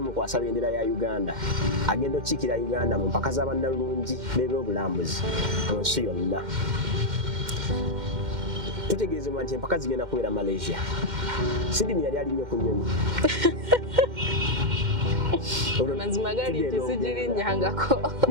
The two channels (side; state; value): left; late; 2.1 ms